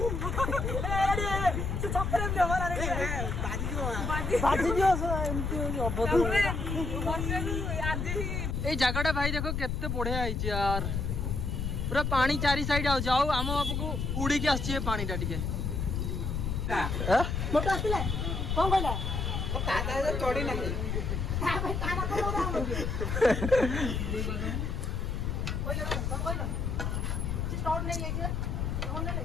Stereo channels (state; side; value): noise; left; rumble, 1 dB below the sound